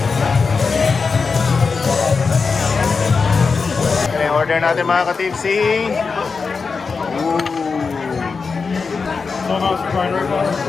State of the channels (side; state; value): right; quieter; 4.9 dB